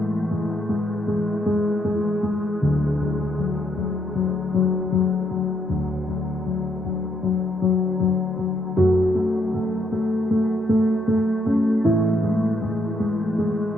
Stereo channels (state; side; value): normal; both; correlation 0.74